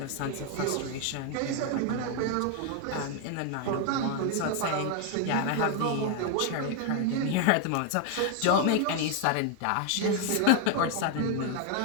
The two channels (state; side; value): different; both; correlation 0.01